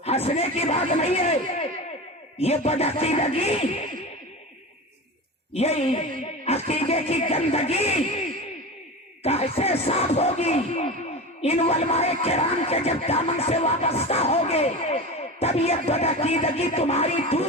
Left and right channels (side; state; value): both; normal; correlation 0.27